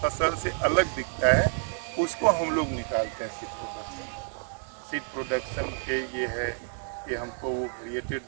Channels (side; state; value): left; silent; 59 dB below the other